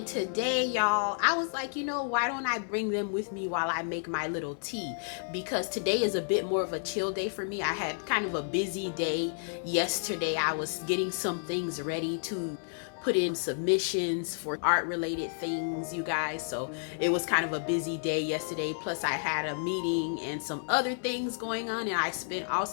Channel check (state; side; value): silent; right; digital silence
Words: today, y'all, I was like, why don't I bring them with me while I make my little tea? Because today is a bit more of a chill day for me. I had kind of a busy day yesterday. I was getting some things ready to put in submissions for art related things, you guys. So it was kind of a busy day yesterday. Plus I had a meeting and some other things going on, and I spent